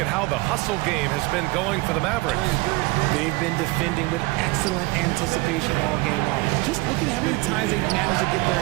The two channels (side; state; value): left; quieter; 22.9 dB